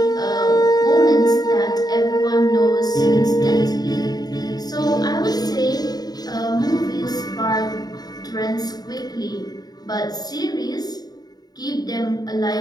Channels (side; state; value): right; late; 0.19 ms